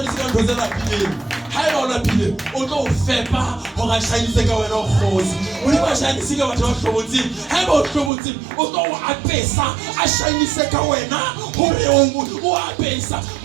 ka ntho tsena pile ha e ona pile o tlo fepa ho ga shainise ka wena khosi modimo a shainisa ka batho ba hlobotsi ha e ba o hlobotsi o tlo a pesa a shainise ka wena hore o a pesa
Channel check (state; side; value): drops out; left; at 8.1 s